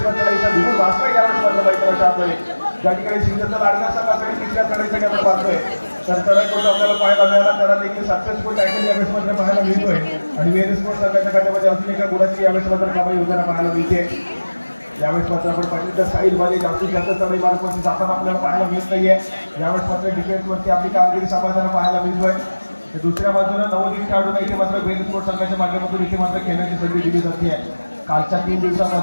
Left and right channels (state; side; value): inverted; both; correlation -1.00